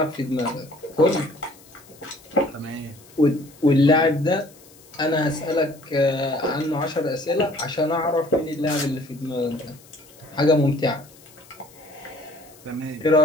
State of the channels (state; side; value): noise; left; hiss, 25 dB below the sound